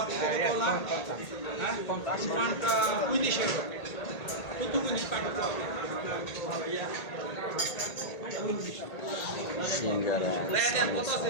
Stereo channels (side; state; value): right; late; 1.8 ms